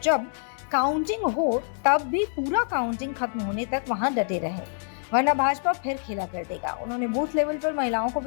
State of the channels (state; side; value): silent; right; 61 dB below the other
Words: जब काउंटिंग हो तब भी पूरा काउंटिंग खत्म होने तक वहां डटे रहे, वरना भाजपा फिर खेला कर देगा। उन्होंने बूथ लेवल पर महिलाओं को